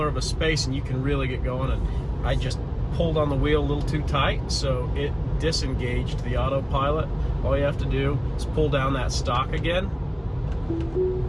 of a space and you can really get going. And I just pulled on the wheel a little too tight, so it disengaged the autopilot. All you have to do is pull down that stalk again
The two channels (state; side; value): identical; both; correlation 1.00